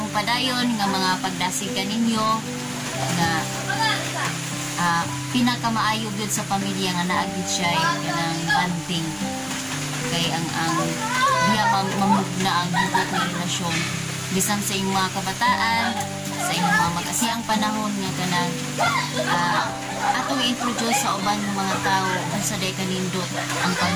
padayon nga mga pagdasig kaninyo nga pinakamaayo gyud sa pamilya nga naagid siya kanang banding kay ang diya mamugna ang hugot nga relasyon bisan sa inyong mga kabataan sa inyong mga mag-asiyang panahon nga kanang atong i-introduce sa uban ng mga tao unsa day kanindot ang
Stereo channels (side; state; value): both; identical; correlation 1.00